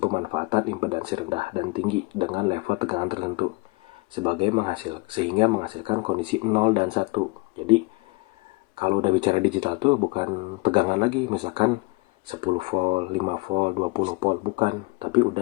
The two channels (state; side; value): quieter; right; 25.2 dB